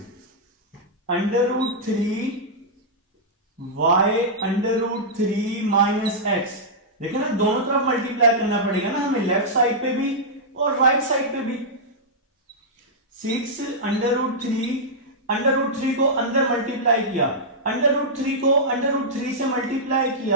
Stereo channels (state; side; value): normal; both; correlation -0.10